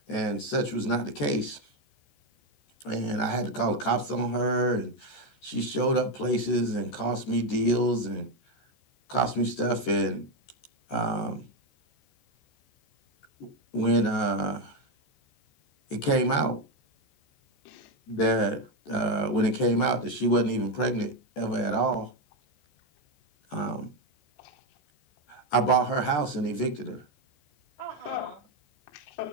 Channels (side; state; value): right; late; 14 ms